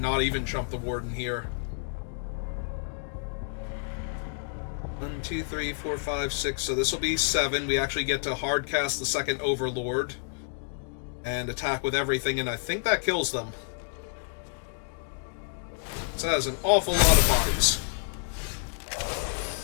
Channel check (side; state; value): right; silent; digital silence